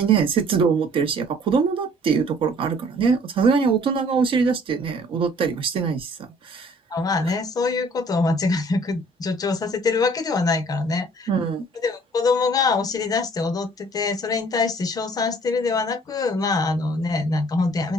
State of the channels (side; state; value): both; normal; correlation 0.55